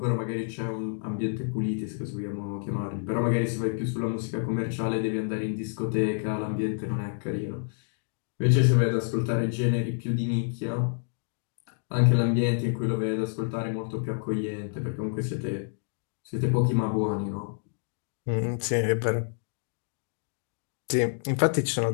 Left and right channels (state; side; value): silent; right; digital silence